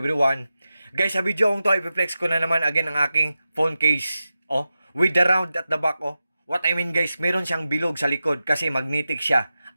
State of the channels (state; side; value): inverted; both; correlation -0.92